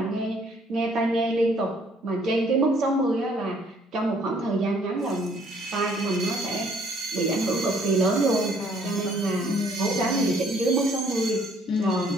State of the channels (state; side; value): normal; both; correlation 0.62